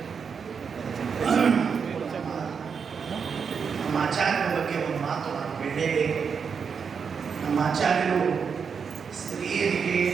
ನಮ್ಮ ಆಚಾರ್ಯರ ಬಗ್ಗೆ ಒಂದು ಮಾತು ನಾನು ಹೇಳಲೇಬೇಕು. ನಮ್ಮ ಆಚಾರ್ಯರು ಸ್ತ್ರೀಯರಿಗೆ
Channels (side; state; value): left; quieter; 6.2 dB